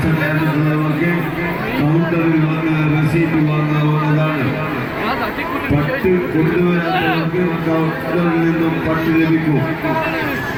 കൗണ്ടറിൽ വന്ന് റെസീറ്റ് വാങ്ങാവുന്നതാണ്. 10 കൊണ്ടുവരാത്തവർക്ക് കൗണ്ടറിൽ നിന്നും 10 ലഭിക്കും.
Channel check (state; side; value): identical; both; correlation 1.00